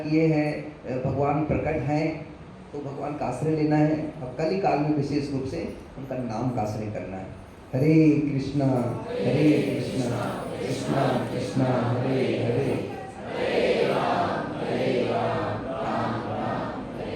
हैं, भगवान प्रकट हैं, तो भगवान का आश्रय लेना है। अब कल ही काल में विशेष रूप से उनका नाम का आश्रय करना है। हरे कृष्णा कृष्णा कृष्णा हरे हरे,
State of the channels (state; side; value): identical; both; correlation 1.00